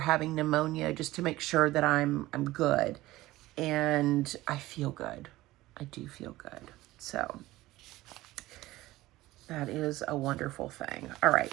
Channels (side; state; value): left; quieter; 17.4 dB